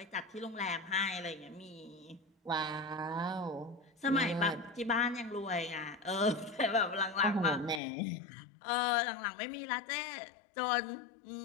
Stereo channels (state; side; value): drops out; right; at 7.8 s